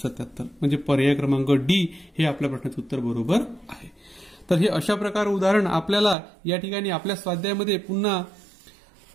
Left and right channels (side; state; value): left; drops out; at 6.2 s